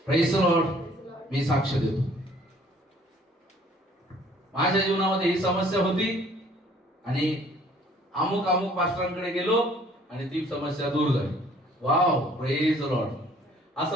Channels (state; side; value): normal; both; correlation 0.57